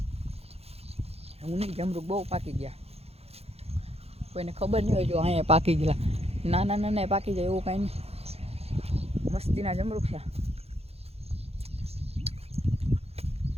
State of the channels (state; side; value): late; left; 0.29 ms